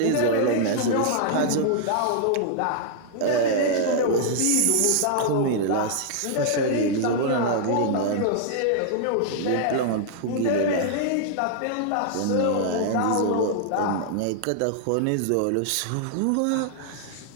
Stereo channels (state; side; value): different; both; correlation -0.01